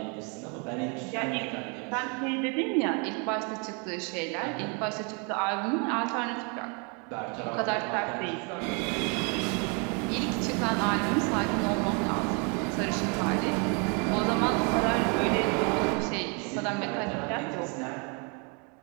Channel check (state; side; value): quieter; left; 34.7 dB